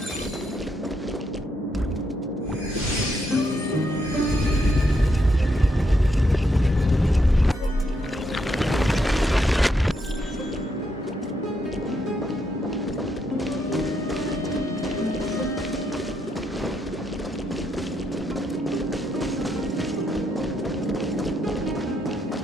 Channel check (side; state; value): both; normal; correlation 0.78